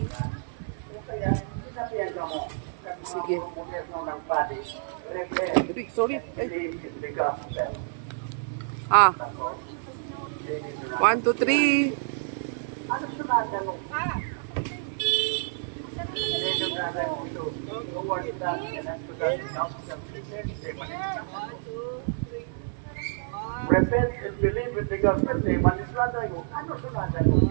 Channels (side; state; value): left; silent; 59 dB below the other